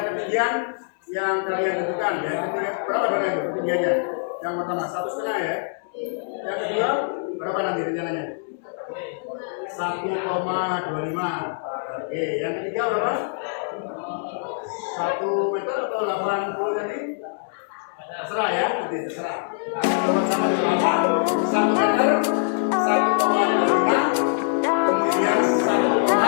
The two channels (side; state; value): right; silent; digital silence